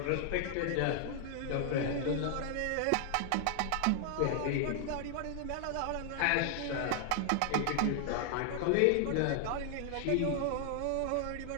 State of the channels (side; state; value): both; different; correlation 0.00